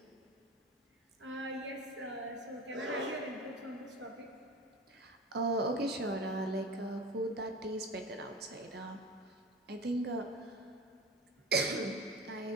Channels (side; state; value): both; normal; correlation 0.32